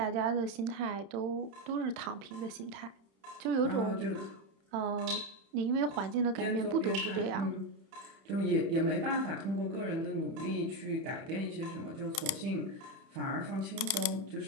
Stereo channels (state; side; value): late; left; 31 ms